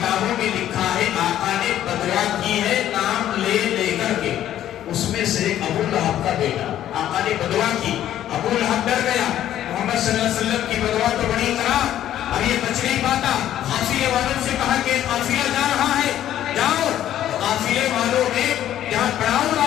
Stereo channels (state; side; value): quieter; right; 11.8 dB